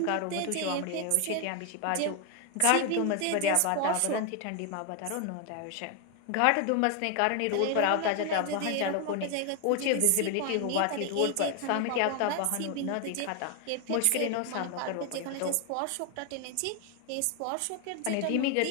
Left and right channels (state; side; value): different; both; correlation 0.01